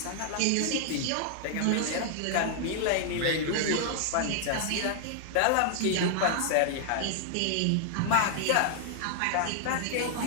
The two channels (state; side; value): different; both; correlation -0.01